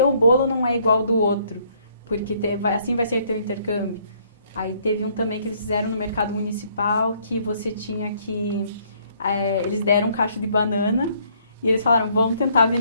bolo não é igual ao do outro, porque assim vai ser teu intercâmbio. Aí teve um também que eles fizeram no mercado municipal, que você tinha que... eles deram um cacho de banana e eles falaram, vamos tentar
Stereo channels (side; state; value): both; inverted; correlation -0.66